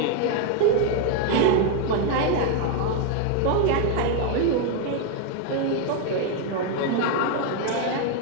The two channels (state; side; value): different; both; correlation 0.01